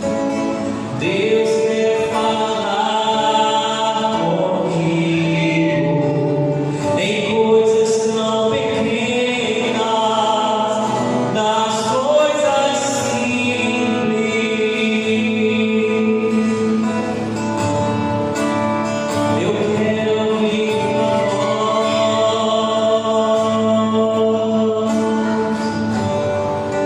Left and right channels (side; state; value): both; identical; correlation 1.00